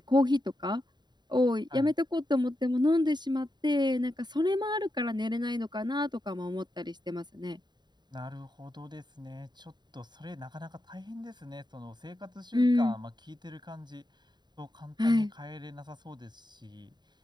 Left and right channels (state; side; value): late; left; 0.21 ms